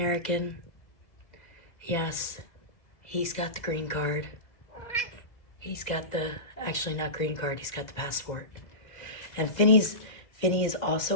Yes, he's got the green card. He's got the, actually not green card, he's got the passport. And Finny is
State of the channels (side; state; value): right; late; 2.0 ms